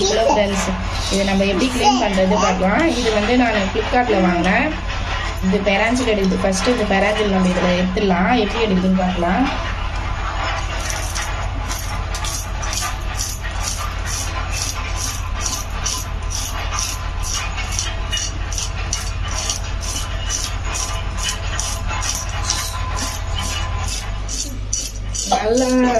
கிலோ ஃப்ரெண்ட்ஸ். இதை நம்ம எப்படி க்ளீன் பண்ணுறது பார்க்கலாம். இது வந்து நான் ஃப்ளிப்கார்ட்டில் வாங்கினேன். இது பெராஞ்சில் எடுக்குது. ஃபஸ்ட்டு இந்த பெராஞ்சில் நம்ம இதில் எடுத்துடலாம். எப்படி எடுக்குதுன்னு பார்க்கலாம். நல்லா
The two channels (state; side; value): identical; both; correlation 1.00